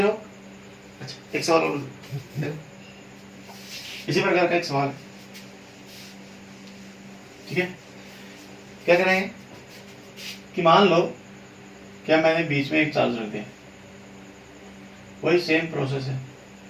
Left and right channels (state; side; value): identical; both; correlation 1.00